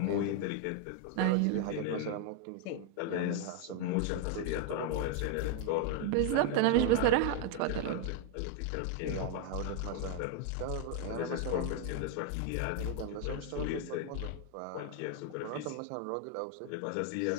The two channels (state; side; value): different; both; correlation 0.00